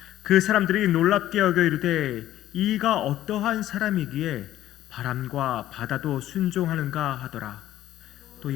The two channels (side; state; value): right; quieter; 13.4 dB